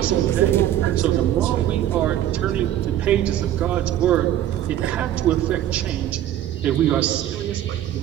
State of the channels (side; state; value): left; quieter; 12.0 dB